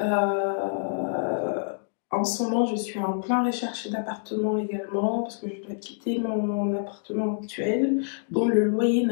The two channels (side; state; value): right; silent; digital silence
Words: en ce moment, je suis en plein recherche d'appartement également parce que je dois quitter mon appartement actuel dont le loyer